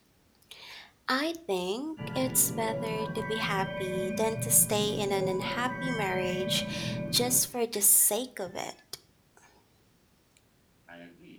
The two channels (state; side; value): identical; both; correlation 1.00